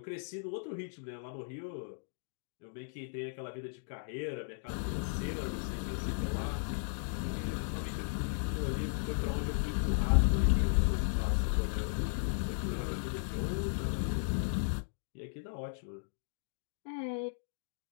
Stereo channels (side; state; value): right; silent; digital silence